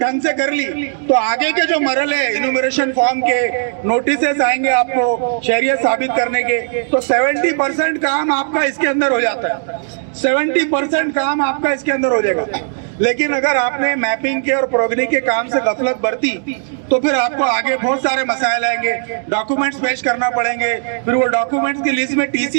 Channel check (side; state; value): left; silent; digital silence